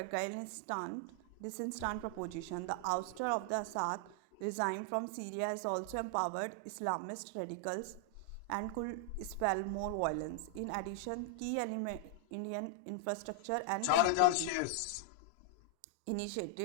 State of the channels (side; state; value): both; different; correlation -0.01